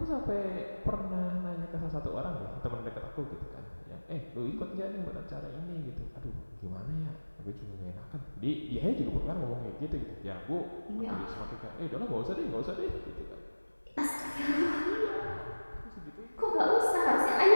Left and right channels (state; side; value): inverted; both; correlation -1.00